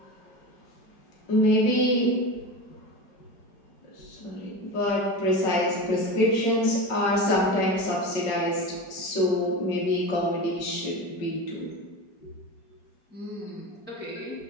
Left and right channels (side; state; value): right; late; 5.4 ms